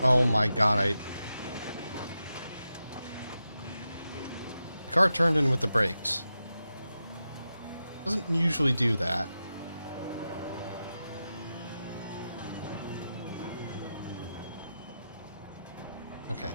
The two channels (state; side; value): inverted; both; correlation -0.90